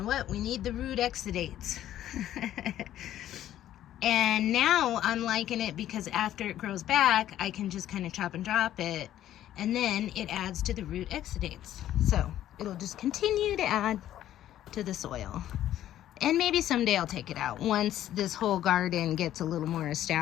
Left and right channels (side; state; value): right; quieter; 12.3 dB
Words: what? We need the root exudates. And now I'm liking it because after it grows back, I can just kind of chop and drop it. And then it adds to the root exudates. So it'll just continue to add to the soil. And maybe someday I'll take it out once this whole garden gets a little more